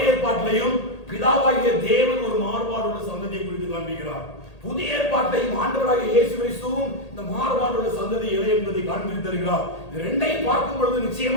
ஏற்பாட்டிலையும் பிதாவாகிய தேவன் ஒரு மாறுபாடுள்ள சந்ததியை குறித்து காண்பிக்கிறார். புதிய ஏற்பாட்டையும் ஆண்டவராகிய இயேசு கிறிஸ்துவும் இந்த மாறுபாடுள்ள சந்ததி எதை என்பதை காண்பித்து தருகிறார். இது ரெண்டையும் பார்க்கும் பொழுது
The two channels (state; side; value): late; right; 1.8 ms